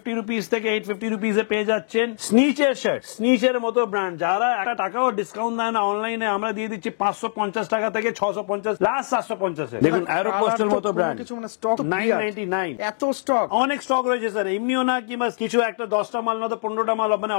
রুপিস থেকে 850 রুপিস এ পেয়ে যাচ্ছেন স্নিচের শার্ট, স্নিচের মতো ব্র্যান্ড। যারা একটা টাকাও ডিসকাউন্ট দেয় না অনলাইনে, আমরা দিয়ে দিচ্ছি 550 টাকা থেকে 650, লাস্ট 750 এ। দেখুন অ্যারো পোস্টের মতো ব্র্যান্ড, 999। এত স্টক, অনেক স্টক রয়েছে স্যার, এমনিও না কিংবা কিছু একটা 10টা মাল না তো 15টা মাল মানে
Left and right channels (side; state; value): right; silent; digital silence